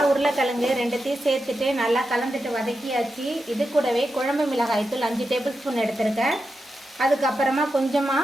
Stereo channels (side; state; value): both; normal; correlation 0.88